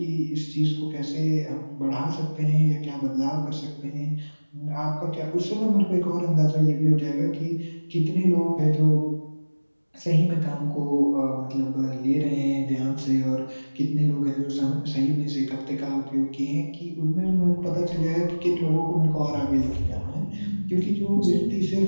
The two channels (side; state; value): both; inverted; correlation -1.00